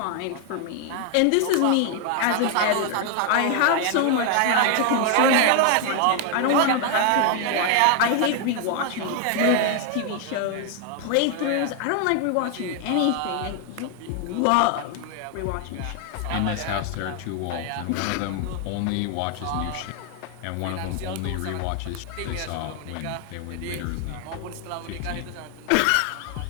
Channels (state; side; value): different; both; correlation 0.00